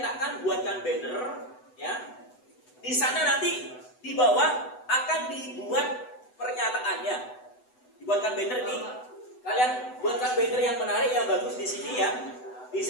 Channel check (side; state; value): right; late; 8.0 ms